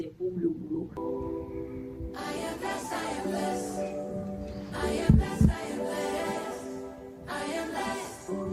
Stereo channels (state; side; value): identical; both; correlation 1.00